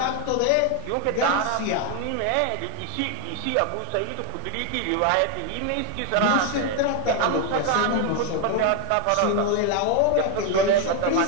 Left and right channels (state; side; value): different; both; correlation 0.01